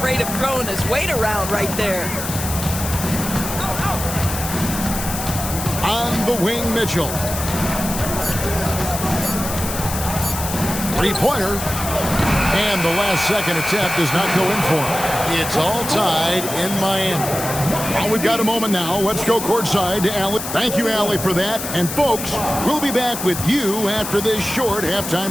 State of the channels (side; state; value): left; noise; hiss, 6 dB below the sound